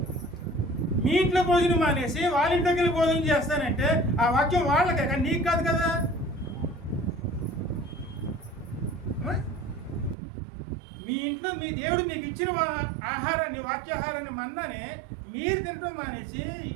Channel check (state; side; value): drops out; left; at 10.2 s